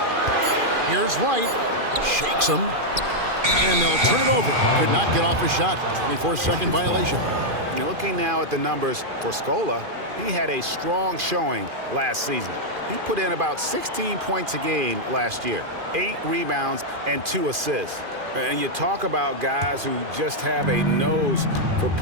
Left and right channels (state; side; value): late; left; 2.5 ms